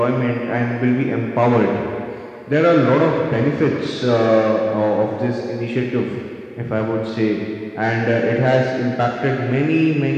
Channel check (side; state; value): both; identical; correlation 1.00